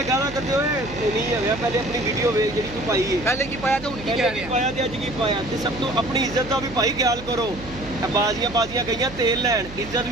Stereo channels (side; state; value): right; noise; hum, 15 dB below the sound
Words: ਗਾਲਾਂ ਕਰਦੇ ਹੋਏ ਨਹੀਂ ਹੋਇਆ, ਪਹਿਲੇ ਆਪਣੀ ਵੀਡੀਓ ਵੇਖ ਜਿਹੜੀ ਤੂੰ ਪਾਈ ਹੈ, ਪਹਿਲੇ ਕੀ ਪਾਇਆ ਤੇ ਹੁਣ ਕੀ ਕਹਿ ਰਿਹਾ, ਪਾਇਆ ਤੇ ਅੱਜ ਕੀ ਪਾਇਆ। ਤੇ ਸਭ ਤੋਂ ਆਪਣੀ ਇੱਜ਼ਤ ਦਾ ਵੀ ਭਾਈ ਖਿਆਲ ਕਰੋ। ਬਾਜ਼ੀਆਂ ਗਈਆਂ ਤੇਲ ਲੈਣ, ਇੱਜ਼ਤ